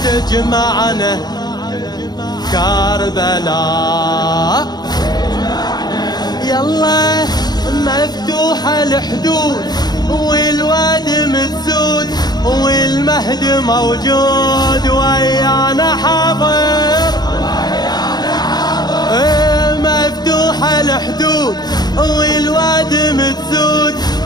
تجمعنا كربلاء. يلا مفتوحة الحدود والواد متسود والمهد موجود ويانا حاضر. مفتوحة الحدود والواد متسود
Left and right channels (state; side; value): late; right; 0.20 ms